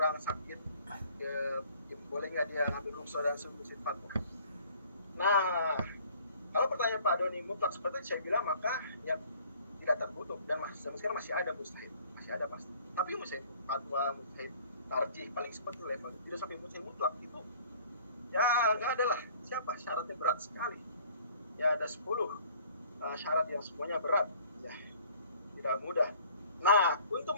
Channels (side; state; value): both; inverted; correlation -0.54